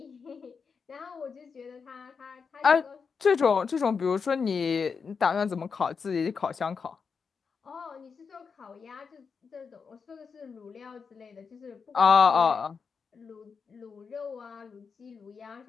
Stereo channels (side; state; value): right; quieter; 5.6 dB